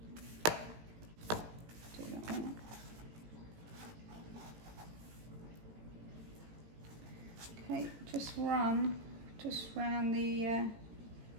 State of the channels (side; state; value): left; late; 18 ms